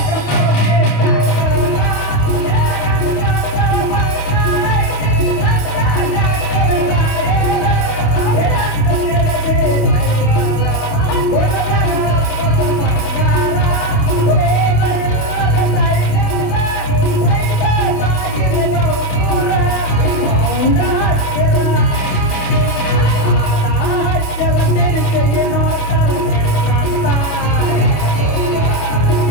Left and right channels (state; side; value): late; right; 27 ms